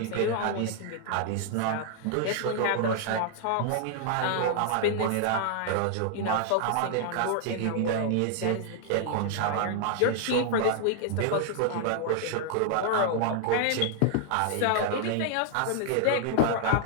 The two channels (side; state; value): both; different; correlation 0.00